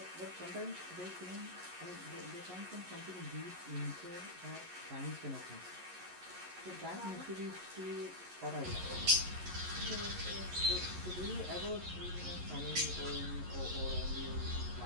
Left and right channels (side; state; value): left; late; 11 ms